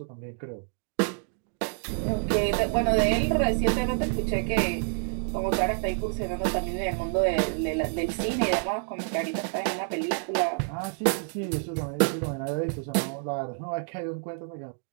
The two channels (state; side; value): silent; left; 57 dB below the other